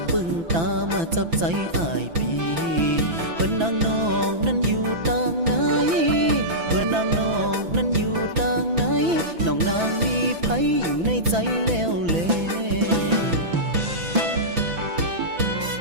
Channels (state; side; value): late; left; 6.0 ms